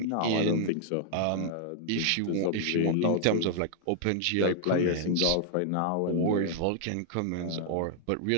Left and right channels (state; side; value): different; both; correlation -0.01